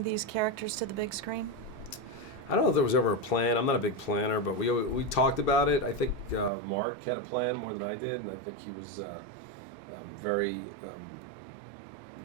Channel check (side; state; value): left; drops out; at 6.5 s